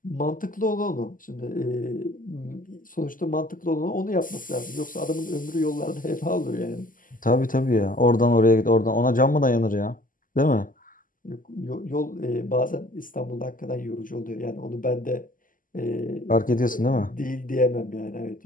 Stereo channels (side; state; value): right; late; 0.39 ms